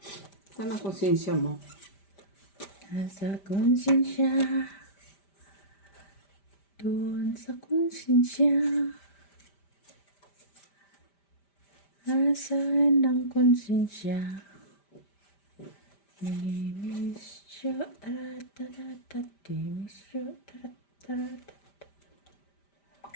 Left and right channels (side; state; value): right; late; 5.1 ms